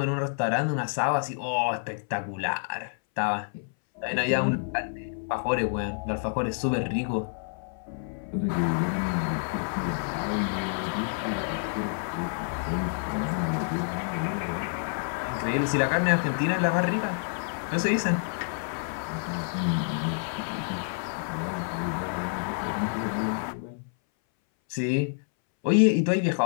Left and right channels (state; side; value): silent; right; 59 dB below the other